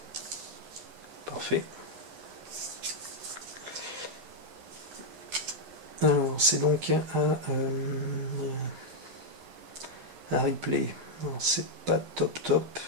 Parfait. Alors, c'est donc à replay. Alors, c'est pas top.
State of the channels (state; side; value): late; left; 12 ms